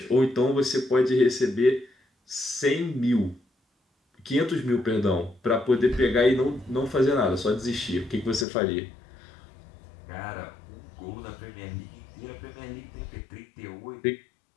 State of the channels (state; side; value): drops out; right; at 8.5 s